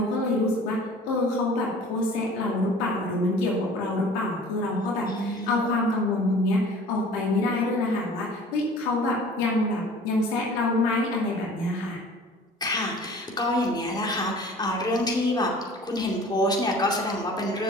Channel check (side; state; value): both; normal; correlation 0.46